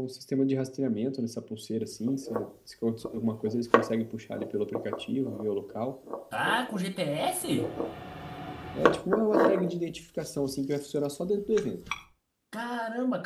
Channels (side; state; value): both; identical; correlation 1.00